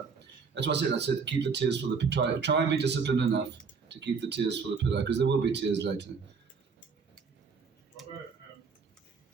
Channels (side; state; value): left; quieter; 5.4 dB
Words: that's what I said. I said keep the tears for the try and be disciplined enough to keep the tears for the pillow, because there will be tears later. Robert,